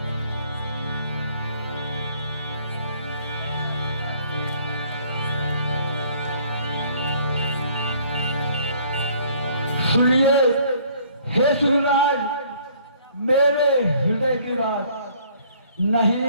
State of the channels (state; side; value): inverted; both; correlation -0.59